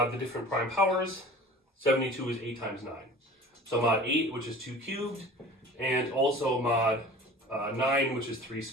the different prime powers. 72 is 8 times 9. So mod 8, which is 2 cubed, and also mod 9, which is 3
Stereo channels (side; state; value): both; normal; correlation 0.42